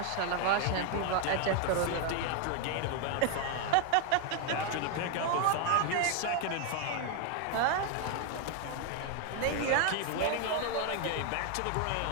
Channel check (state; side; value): different; both; correlation 0.01